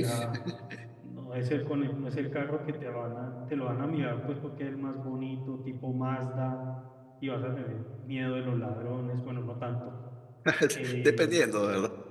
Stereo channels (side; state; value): both; identical; correlation 1.00